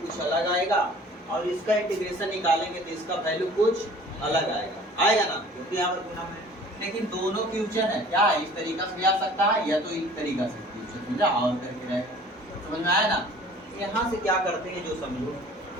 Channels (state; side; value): normal; both; correlation 0.49